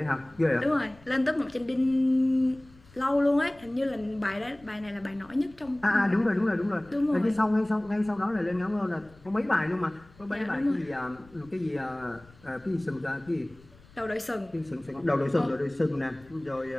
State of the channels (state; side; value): noise; left; rumble, 25 dB below the sound